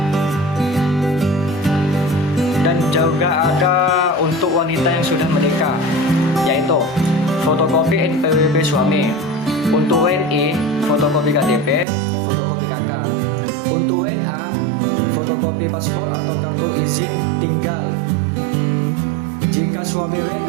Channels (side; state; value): left; drops out; at 11.9 s